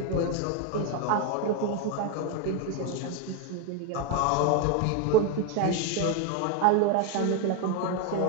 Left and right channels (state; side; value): different; both; correlation 0.02